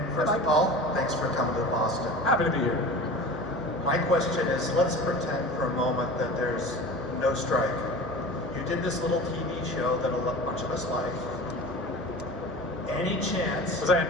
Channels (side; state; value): right; noise; hum, 15 dB below the sound